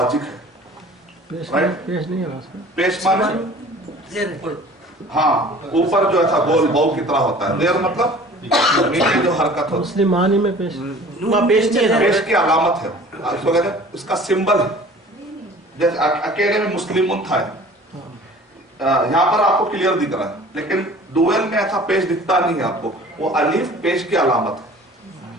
है। पेश नहीं है, पेश माने हाँ ऊपर जो ऐसा गोल बौ की तरह होता है, जेर मतलब नीचे जो हरकत होती है। मुस्लिम मानी में पेश पेश की अलामत है, इसको कहते हैं, इसका सिंबल है। जैसे अकेले में मुस्लिम था, यहाँ पर आपको क्लियर दिख रहा है, लेकिन डुएल में ऐसा पेश दिखता नहीं है आपको। वो अलीफ पेश की अलामत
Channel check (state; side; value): normal; both; correlation 0.46